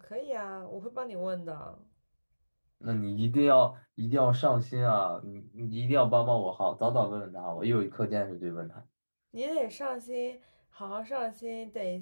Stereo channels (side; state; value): both; inverted; correlation -1.00